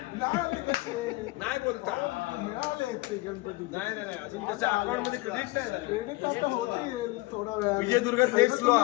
मिळाले कसे? नाही बोलता. मिळाले ते गणपती. नाही अजून त्याच्या अकाउंट मध्ये क्रेडिट नाही झाले. क्रेडिट आता होतील थोडा वेळ. विजयदुर्ग नेक्स्ट लो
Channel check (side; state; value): right; quieter; 21.8 dB